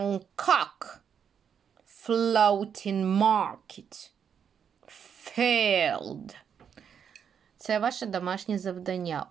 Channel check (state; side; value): quieter; left; 7.6 dB